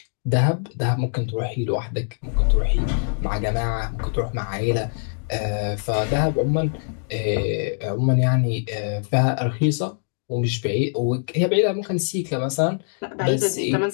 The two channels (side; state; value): right; silent; digital silence